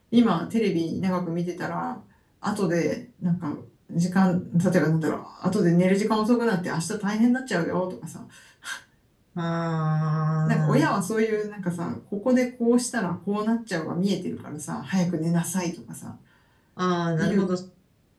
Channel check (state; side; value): identical; both; correlation 1.00